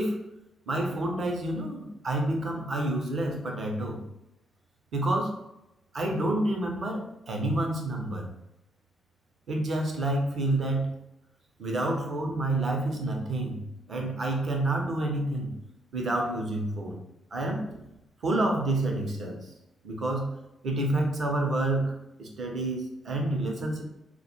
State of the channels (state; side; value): normal; both; correlation 0.69